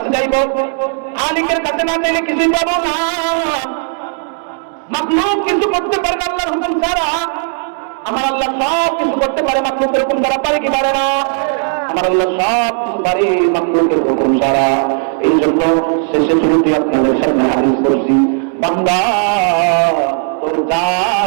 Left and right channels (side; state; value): left; silent; 56 dB below the other